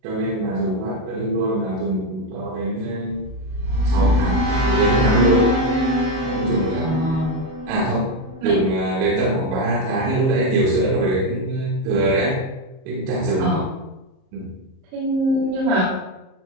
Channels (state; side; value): late; left; 37 ms